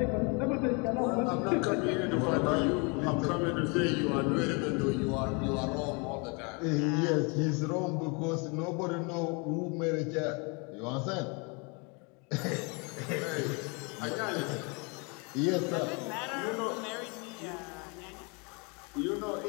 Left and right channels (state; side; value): quieter; right; 32.1 dB